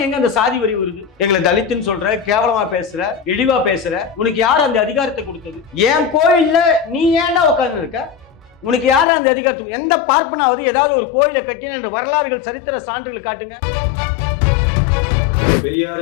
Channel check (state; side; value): drops out; right; at 9.1 s